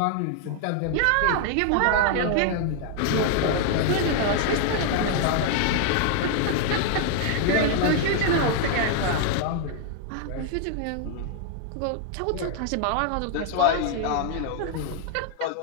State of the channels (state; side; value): different; both; correlation 0.00